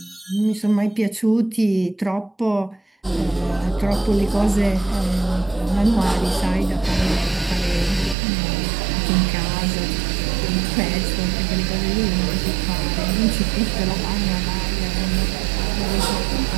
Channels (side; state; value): left; drops out; at 8.2 s